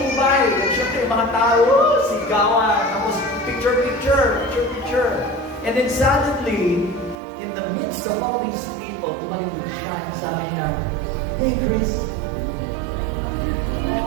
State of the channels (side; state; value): left; drops out; at 7.2 s